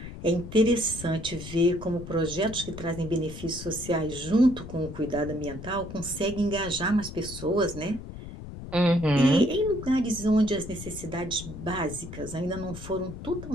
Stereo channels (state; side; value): noise; left; rumble, 11 dB below the sound